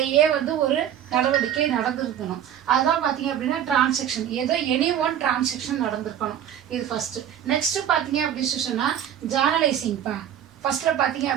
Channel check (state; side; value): quieter; left; 10.1 dB